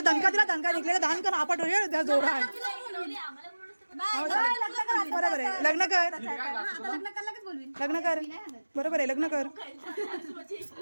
दणका दिला दणका निघलेला दान कर आपट त्या जोरा बरोबर आहे लग्न कर बरोबर आहे लग्न कर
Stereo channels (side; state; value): both; inverted; correlation -1.00